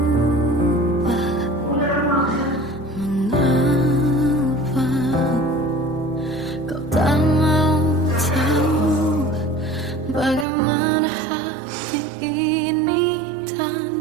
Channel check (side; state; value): left; drops out; at 10.5 s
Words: Mengapa kau tak mau tahu bagaimana hati ini